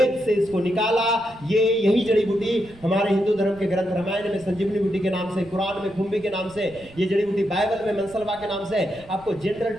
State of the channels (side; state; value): right; noise; rumble, 24 dB below the sound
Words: से इसको निकाला। ये यही जड़ी बूटी हमारे हिंदू धर्म के ग्रंथ रामायण में संजीवनी बूटी के नाम से, कुरान में खुम्बी के नाम से, ये जड़ी बूटी बाइबल में मनसलवा के नाम से आपको जनरल